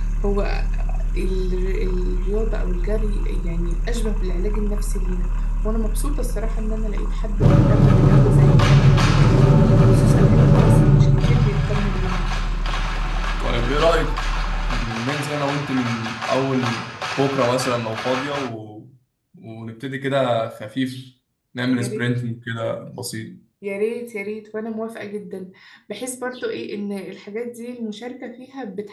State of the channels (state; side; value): identical; both; correlation 1.00